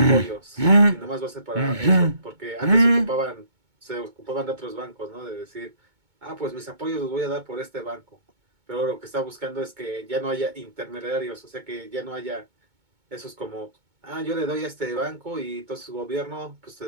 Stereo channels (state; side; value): late; left; 2.2 ms